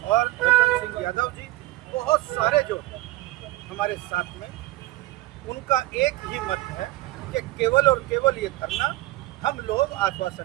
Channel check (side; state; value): left; quieter; 17.6 dB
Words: और रतन सिंह यादव जी, बहुत सारे जो हमारे साथ में, उनका एक ही मत है कि केवल और केवल ये धरना हम लोग